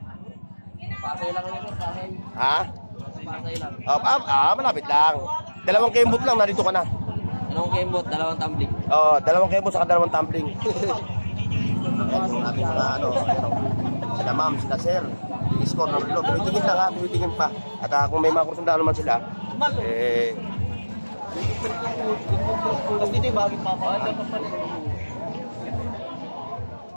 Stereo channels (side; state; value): both; inverted; correlation -1.00